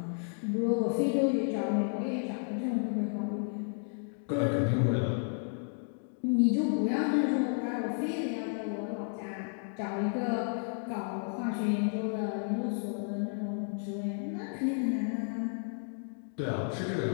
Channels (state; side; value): silent; right; 56 dB below the other